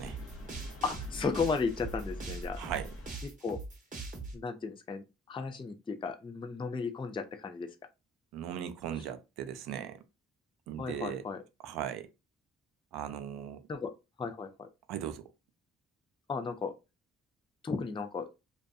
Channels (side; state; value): both; normal; correlation 0.53